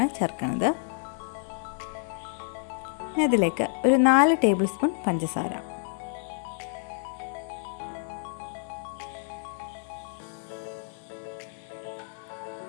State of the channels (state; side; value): silent; right; 59 dB below the other